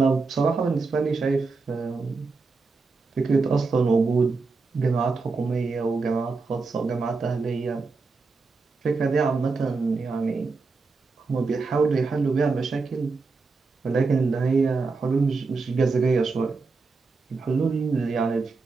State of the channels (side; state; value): left; quieter; 4.2 dB